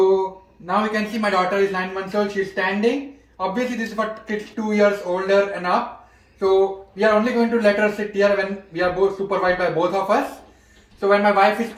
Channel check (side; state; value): both; identical; correlation 1.00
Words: now you can see my daughter is 9 months old. She's standing. Obviously this is for kids 2 years older and up. So we are only going to let her sit here when we are both supervised by both of us. So when my wife is